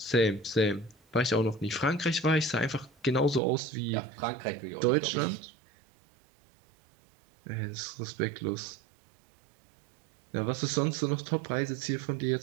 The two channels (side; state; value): left; drops out; at 3.4 s